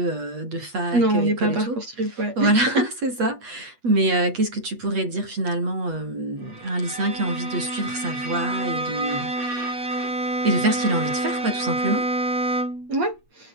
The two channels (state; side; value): late; left; 8.3 ms